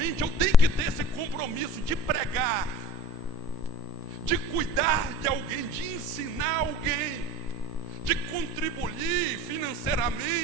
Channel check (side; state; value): both; normal; correlation 0.41